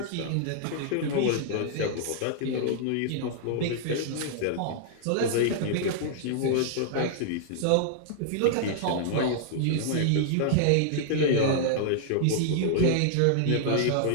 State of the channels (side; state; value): both; different; correlation -0.01